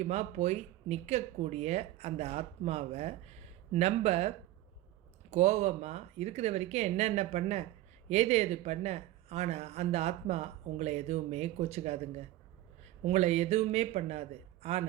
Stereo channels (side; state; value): left; quieter; 15.5 dB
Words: போய் நிற்கக்கூடிய அந்த ஆத்மாவை நம்ம கோபமாக இருக்கிற வரைக்கும் என்னென்ன பண்ண, ஏது பண்ண, ஆனால் அந்த ஆத்மா உங்களை எதுவுமே கோச்சிக்காதுங்க, உங்களை எதுவுமே பண்ணாது.